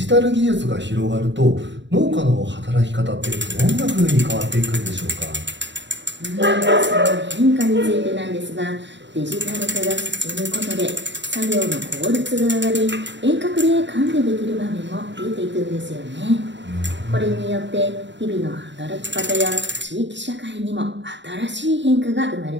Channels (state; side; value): late; left; 0.53 ms